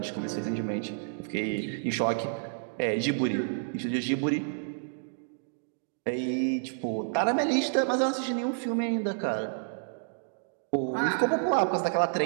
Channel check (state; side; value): silent; left; digital silence